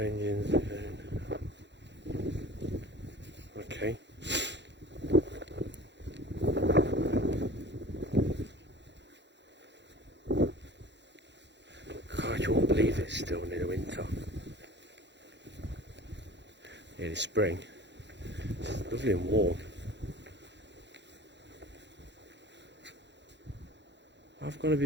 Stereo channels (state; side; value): late; left; 0.52 ms